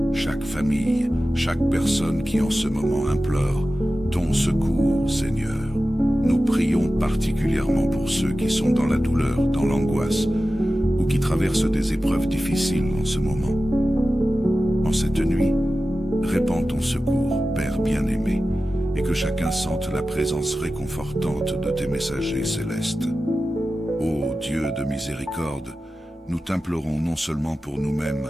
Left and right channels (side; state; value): both; normal; correlation 0.94